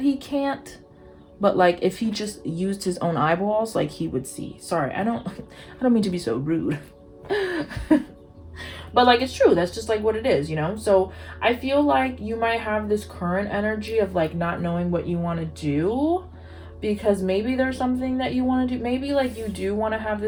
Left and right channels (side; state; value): both; identical; correlation 1.00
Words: he can't, but like if he just used his own eyeballs, like he would see. Sorry, I don't mean to be so rude. But like it's true, that's just like what it is, you know. So I feel like you might have this current energy of like not knowing what you want to do, because maybe there's something that you want to do. Maybe like you do want to have